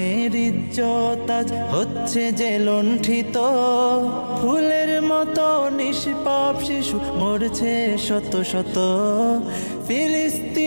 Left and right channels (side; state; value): both; inverted; correlation -1.00